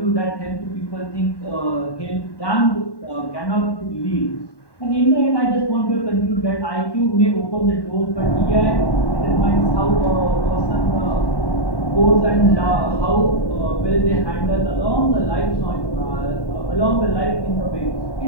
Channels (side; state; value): right; late; 1.1 ms